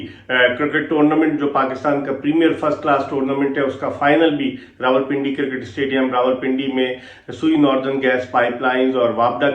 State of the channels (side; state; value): both; identical; correlation 1.00